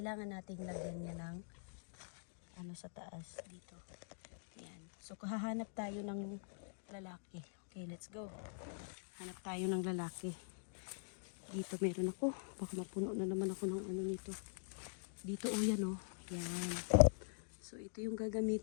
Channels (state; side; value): silent; right; digital silence